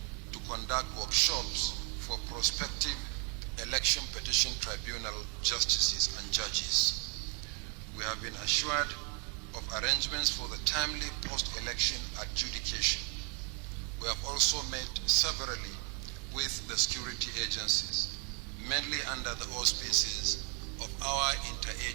to conduct workshops for prospective election petition tribunal justices and judges. We have been assured of arrangements for the timely post-election adjudication. We have also met severally with the security agencies, mainly under the auspices of our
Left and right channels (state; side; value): quieter; left; 36.0 dB